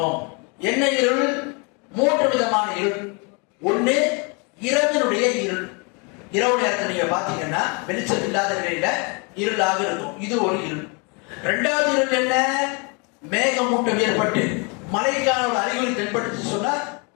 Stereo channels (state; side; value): quieter; right; 32.7 dB